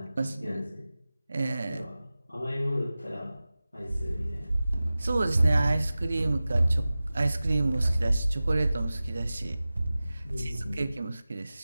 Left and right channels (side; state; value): both; inverted; correlation -0.96